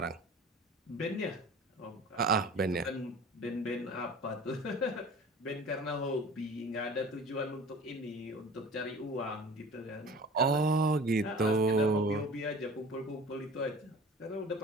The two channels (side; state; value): both; normal; correlation 0.41